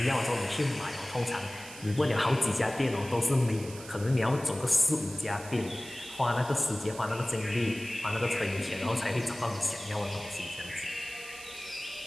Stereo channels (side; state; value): right; noise; hiss, 15 dB below the sound